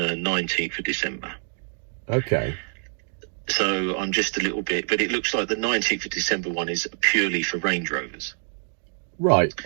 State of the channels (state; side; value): silent; left; 61 dB below the other